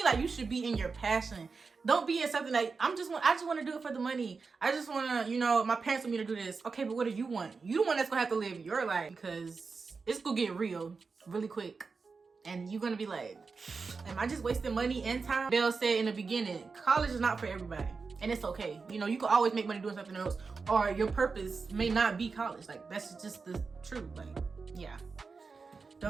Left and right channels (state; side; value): quieter; left; 4.7 dB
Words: like you should be in your passion. Don't be in something like, I just want to do it for the money. I just want to, my parents want me to do this. Okay, but what do you want? You the one that's gonna have to live your life, because it's gonna get real really quick. And you're gonna be like, am I just wasting money and time? Belle said in the beginning, college is not for everybody. And it's okay. You can always make money doing something else, or your purpose may not be college. Like, that's just the truth. Like, yeah.